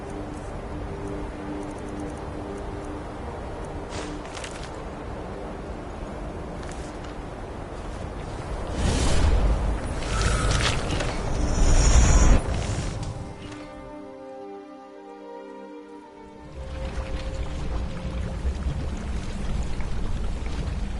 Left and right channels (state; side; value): identical; both; correlation 1.00